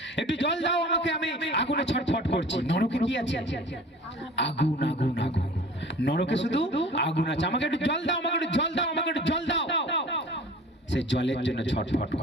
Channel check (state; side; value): normal; both; correlation 0.44